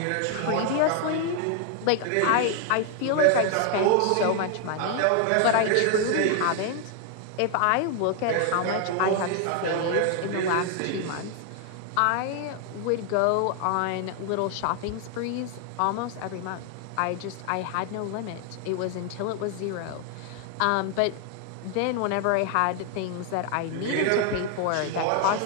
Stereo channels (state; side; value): different; both; correlation 0.00